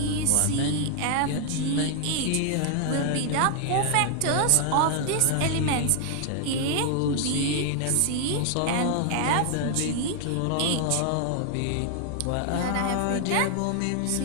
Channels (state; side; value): different; both; correlation 0.00